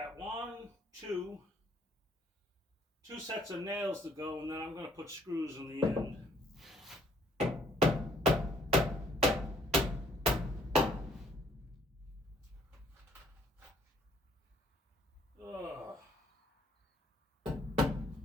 two sets of nails to go, and then I'm going to put screws in the end. Ugh.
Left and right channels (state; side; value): normal; both; correlation 0.63